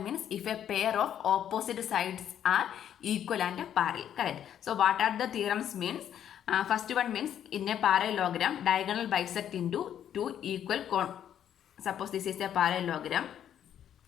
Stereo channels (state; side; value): quieter; right; 9.9 dB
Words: means if a pair of opposite sides are equal and parallel. Correct. So what are the theorems means? First one means in a parallelogram, diagonal bisect into two equal suppose this is a parallelogram.